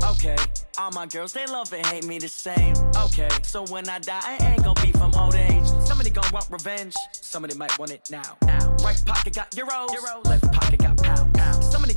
Okay, all my girls they love and hate me the same. Okay, so when I die, I ain't gonna be from old age. Somebody gonna want revenge. Somebody might want it now. Right pocket got euros. Left pocket got pounds. Somebody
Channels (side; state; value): both; inverted; correlation -1.00